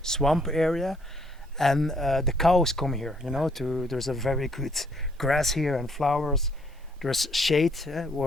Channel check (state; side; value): normal; both; correlation 0.66